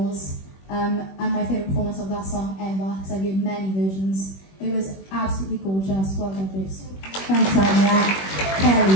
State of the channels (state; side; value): late; right; 21 ms